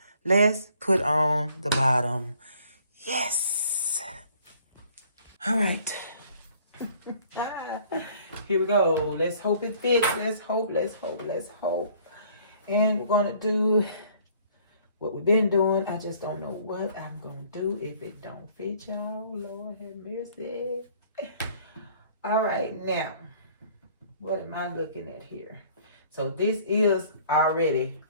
let's put on the bottom. Yes. All right. Here we go. Let's hope it fits. Let's hope. And we're going to do what we've been doing. I just don't know what I'm going to do if it don't fit, y'all. Lord have mercy. All right, now, what am I looking at here? So this is already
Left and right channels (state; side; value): inverted; both; correlation -0.57